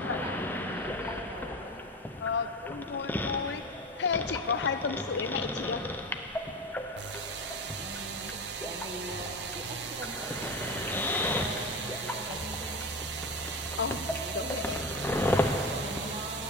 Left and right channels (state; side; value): normal; both; correlation 0.25